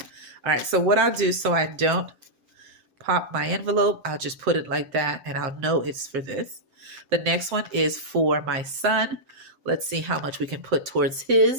All right, so what I'll do so I don't pop my envelope, I'll just put it like that and I'll know it's for this. The next one is for my son. Let's see how much we can put towards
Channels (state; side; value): late; left; 7.7 ms